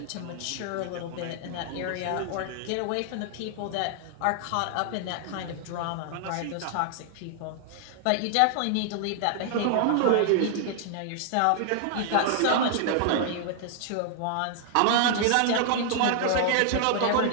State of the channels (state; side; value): different; both; correlation 0.00